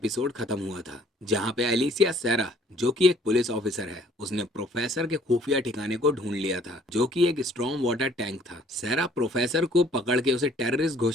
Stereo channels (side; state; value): both; normal; correlation 0.59